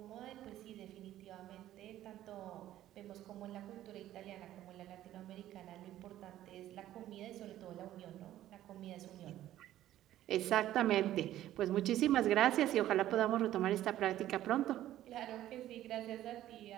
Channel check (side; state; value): left; quieter; 13.3 dB